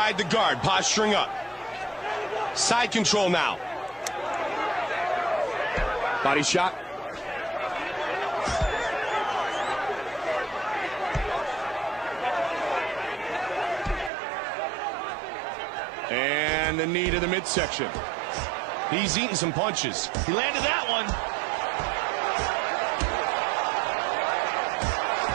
the guard, posturing up. Side control now. Body shot. And the knee to the midsection. He's eating some punches. He landed that one.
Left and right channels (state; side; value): drops out; left; at 14.1 s